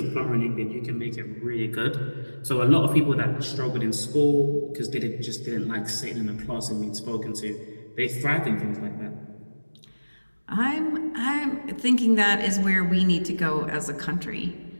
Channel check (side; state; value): both; inverted; correlation -1.00